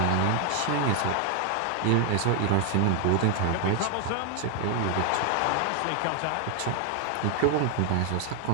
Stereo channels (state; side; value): different; both; correlation 0.00